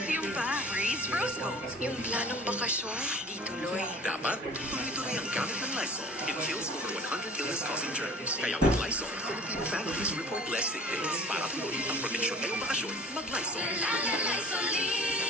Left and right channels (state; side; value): normal; both; correlation 0.45